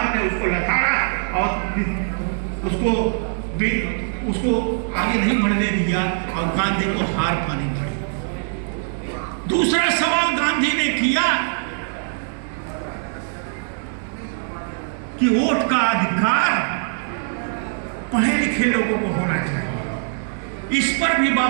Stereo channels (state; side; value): silent; left; digital silence